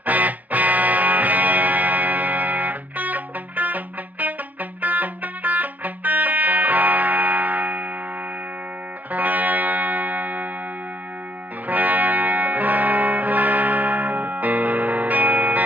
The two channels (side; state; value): left; late; 0.080 ms